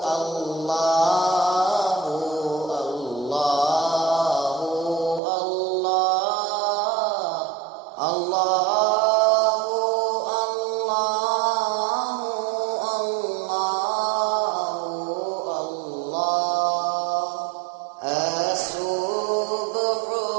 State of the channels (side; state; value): left; drops out; at 5.2 s